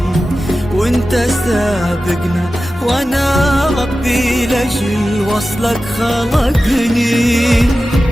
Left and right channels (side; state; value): both; normal; correlation 0.94